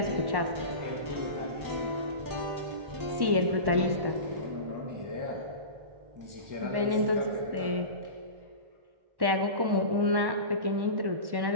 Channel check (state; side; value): late; left; 1.1 ms